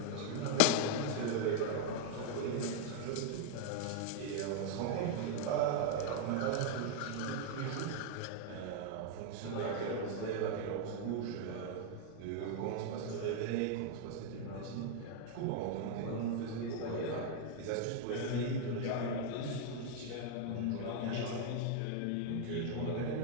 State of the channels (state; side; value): different; both; correlation 0.00